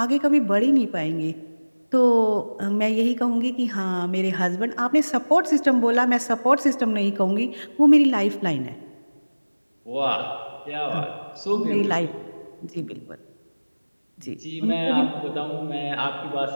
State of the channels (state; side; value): inverted; both; correlation -1.00